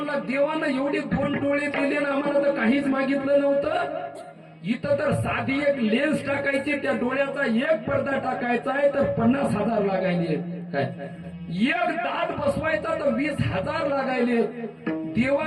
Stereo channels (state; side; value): identical; both; correlation 1.00